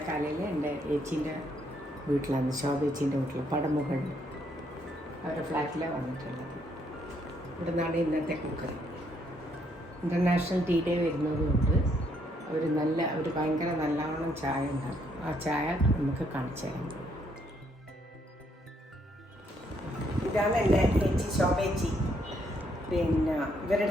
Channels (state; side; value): normal; both; correlation 0.71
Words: എൻ്റെ ഏച്ചീൻ്റെ വീട്ടിലാണ്, ശോഭേച്ചീൻ്റെ വീട്ടിൽ പടമുകളിൽ അവരുടെ ഫ്ലാറ്റിലാണ് വന്നിട്ടുള്ളത്. ഇവിടെ നിന്നാണ് ഇന്നത്തെ കുക്കറി. ഇൻ്റർനാഷണൽ ടീ ഡേ വരുന്നതുകൊണ്ട് അവർ ഭയങ്കര നല്ലവണ്ണം ചായ ഉണ്ടാക്കും. ആ ചായ നമുക്ക് കാണിച്ചു തരാം. ഇതാണ് എൻ്റെ ഏച്ചി ശോഭേച്ചി. പിന്നെ ഇവരുടെ